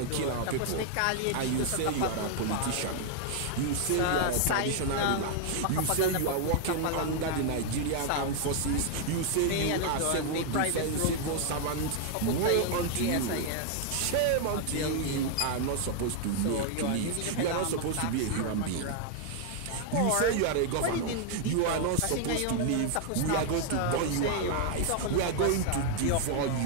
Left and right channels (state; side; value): different; both; correlation 0.00